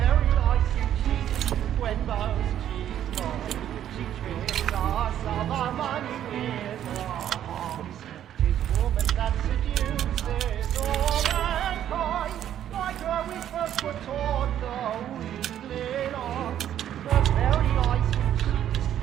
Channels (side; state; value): left; quieter; 10.8 dB